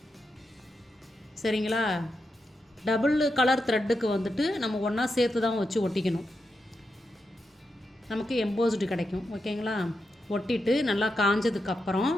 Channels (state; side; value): normal; both; correlation 0.86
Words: சரிங்களா? டபுள் கலர் த்ரெட்டுக்கு வந்துட்டு நம்ம ஒன்றா சேர்த்து தான் வச்சு ஒட்டிக்கணும், நமக்கு எம்போஸ்டு கிடைக்கும். ஓகேங்களா? ஒட்டிட்டு நல்லா காஞ்சதுக்கப்புறம்